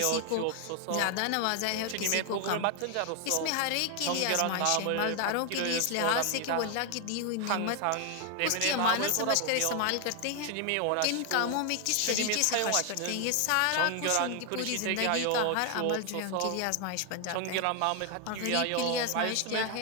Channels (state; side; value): different; both; correlation 0.00